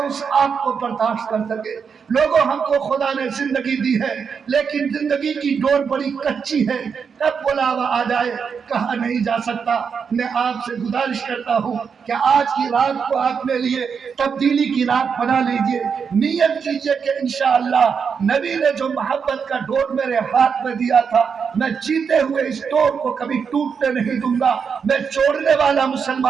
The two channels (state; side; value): quieter; left; 6.3 dB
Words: اس آگ کو برداشت کر کر سکے۔ لوگوں ہم کو خدا نے زندگی دی ہے لیکن زندگی کی ڈور بڑی کچی ہے، کب بلاوا آ جائے کہا نہیں جا سکتا۔ میں آپ سے گزارش کرتا ہوں کہ آج کی رات کو اپنے لیے تبدیلی کی رات بنا لیجئے، نیت کیجئے کہ انشاءاللہ نبی نے جو محبت کا ڈور میرے ہاتھ میں دیا تھا میں جیتے ہوئے اس ڈور کو کبھی ٹوٹنے نہیں دوں گا، میں چھوڑنے والا